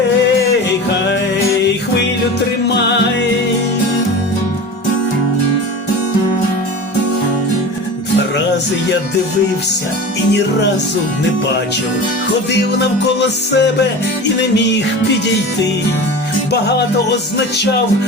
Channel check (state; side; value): normal; both; correlation 0.32